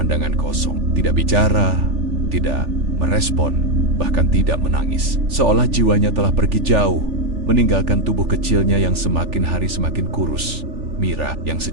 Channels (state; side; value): late; left; 3.4 ms